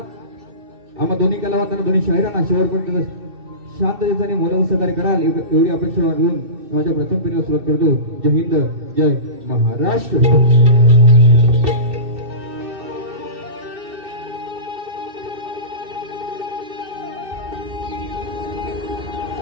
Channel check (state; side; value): late; left; 2.6 ms